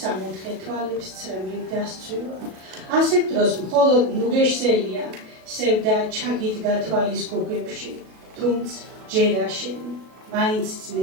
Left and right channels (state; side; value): late; left; 37 ms